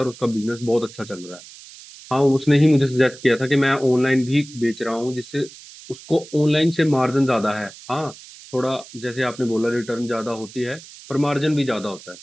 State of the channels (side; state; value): right; noise; hiss, 18 dB below the sound